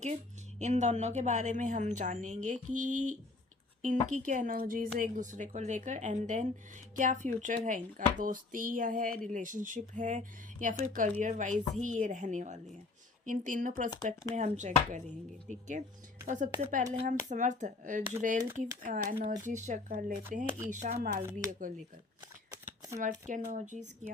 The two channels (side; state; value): right; quieter; 3.4 dB